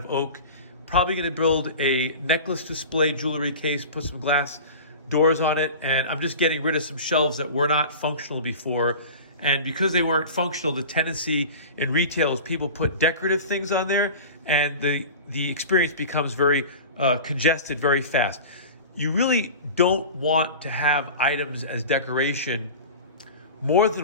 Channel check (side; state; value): both; inverted; correlation -0.35